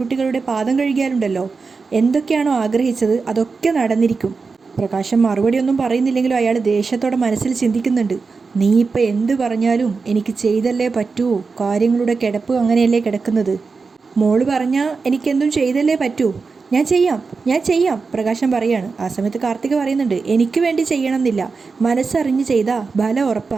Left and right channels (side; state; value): left; quieter; 4.6 dB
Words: പാദം കഴുകിയാലുണ്ടല്ലോ, എന്തൊക്കെയാണോ ആഗ്രഹിച്ചത് അതൊക്കെ നടന്നിരിക്കും. പ്രകാശം മറുപടിയൊന്നും പറയുന്നില്ലെങ്കിലും അയാൾ ദേഷ്യത്തോടെ മനസ്സിൽ ചിന്തിക്കുന്നുണ്ട്. നീ ഇപ്പം എന്ത് പറഞ്ഞാലും എനിക്ക് ചെയ്തല്ലേ പറ്റൂ, കാര്യങ്ങളുടെ കിടപ്പ് അങ്ങനെയല്ലേ കിടക്കുന്നത്. മോള് പറഞ്ഞാൽ എനിക്കെന്തും ചെയ്തല്ലേ പറ്റൂ. ഞാൻ ചെയ്യാം പ്രകാശം പറയാണ്. ആ സമയത്ത് കാർത്തിക പറയുന്നുണ്ട്, എനിക്ക് വേണ്ടി ചെയ്യണമെന്നില്ല, മനസ്സറിഞ്ഞ് ചെയ്താൽ ബലം